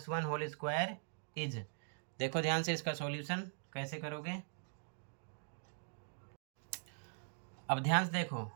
1 whole square is, देखो ध्यान से इसका सॉल्यूशन कैसे करोगे। अब ध्यान से देखो,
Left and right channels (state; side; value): silent; left; digital silence